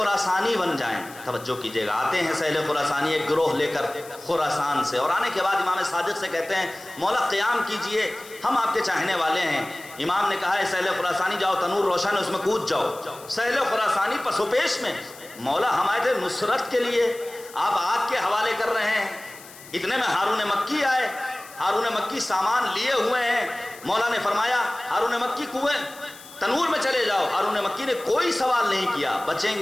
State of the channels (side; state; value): left; noise; hiss, 19 dB below the sound